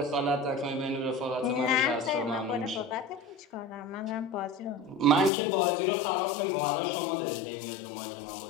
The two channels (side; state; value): right; drops out; at 5.3 s